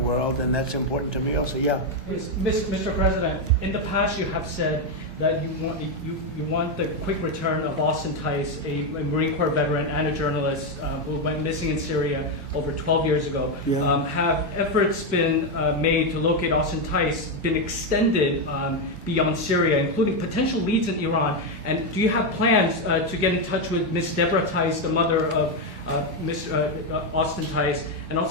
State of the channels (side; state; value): both; normal; correlation 0.06